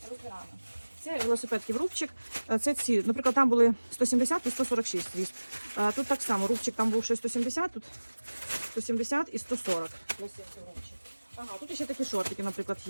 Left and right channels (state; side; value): inverted; both; correlation -1.00